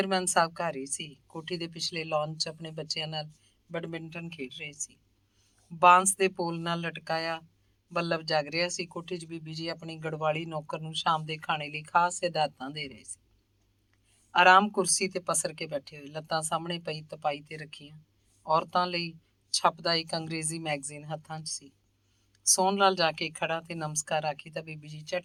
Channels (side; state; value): both; identical; correlation 1.00